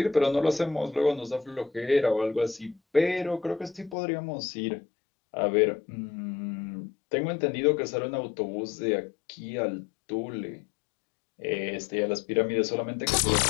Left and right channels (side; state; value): right; drops out; at 4.0 s